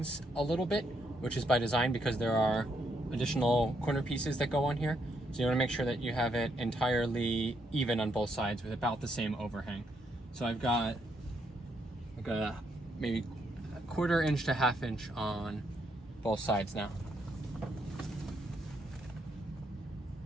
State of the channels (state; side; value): normal; both; correlation 0.75